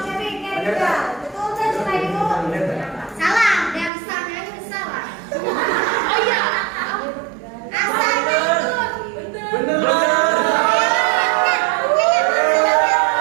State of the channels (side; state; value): left; drops out; at 3.9 s